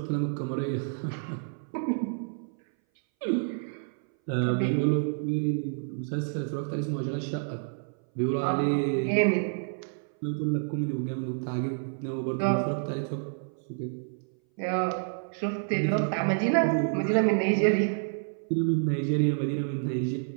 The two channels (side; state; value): left; silent; 58 dB below the other